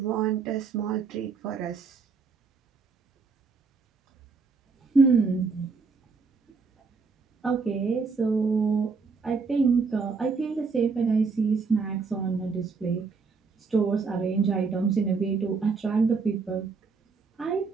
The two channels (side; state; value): left; quieter; 4.8 dB